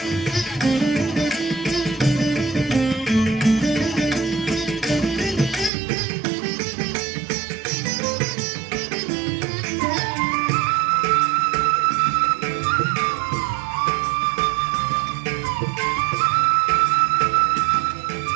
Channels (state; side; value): drops out; left; at 5.7 s